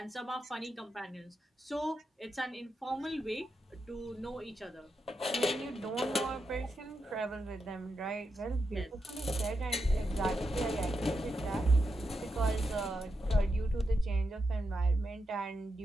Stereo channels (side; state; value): both; normal; correlation 0.86